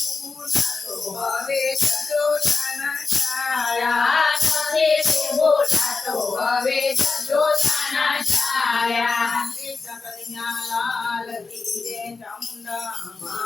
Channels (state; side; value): quieter; right; 4.3 dB